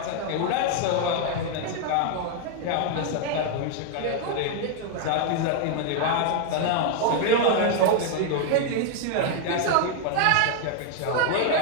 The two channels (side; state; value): both; different; correlation 0.00